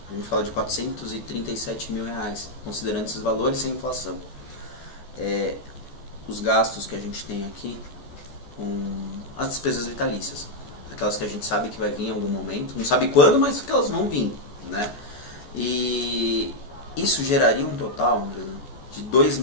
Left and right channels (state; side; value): late; right; 14 ms